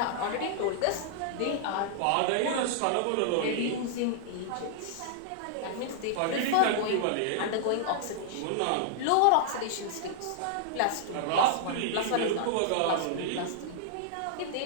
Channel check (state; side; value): different; both; correlation -0.01